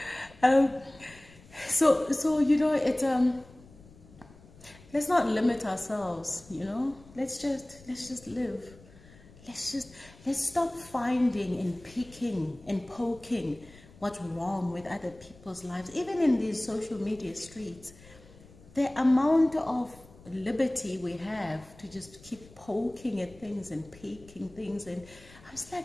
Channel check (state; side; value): noise; left; rumble, 23 dB below the sound